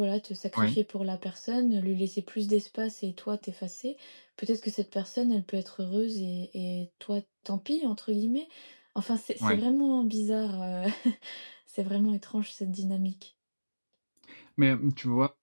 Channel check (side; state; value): both; inverted; correlation -1.00